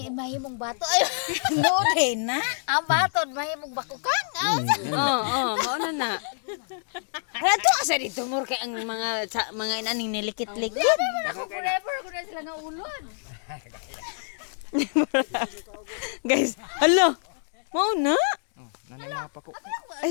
bato. Ay mo din na. Ang batod mahimong bakukan. Oo, mauna na. Ato asa dito mur kay ang mga inaning nilikit-likit. Ako forever ko na sila nga ulod. Guys, hello. Mauna.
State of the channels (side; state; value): right; silent; digital silence